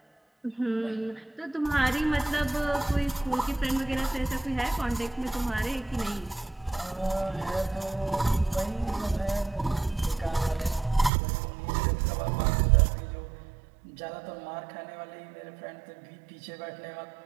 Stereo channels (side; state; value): left; drops out; at 11.1 s